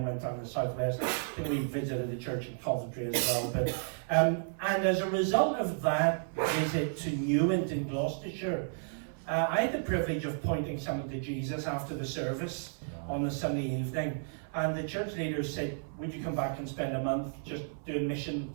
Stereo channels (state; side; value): silent; left; 56 dB below the other